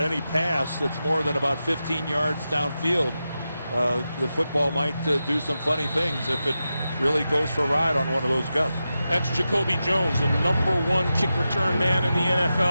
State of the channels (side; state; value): both; inverted; correlation -0.90